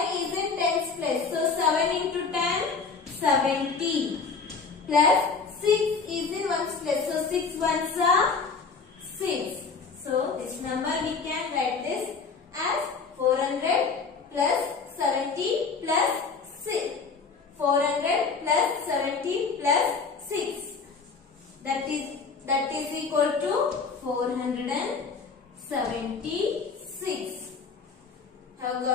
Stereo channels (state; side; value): quieter; right; 5.0 dB